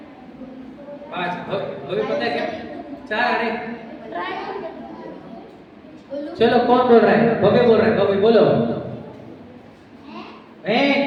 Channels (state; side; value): identical; both; correlation 1.00